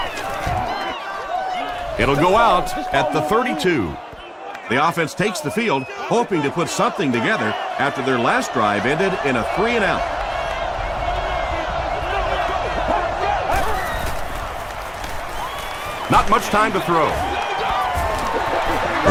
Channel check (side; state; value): both; identical; correlation 1.00